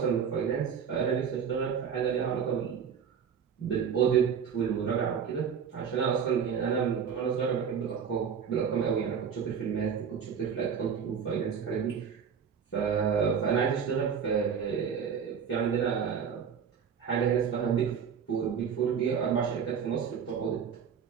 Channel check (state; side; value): quieter; left; 7.1 dB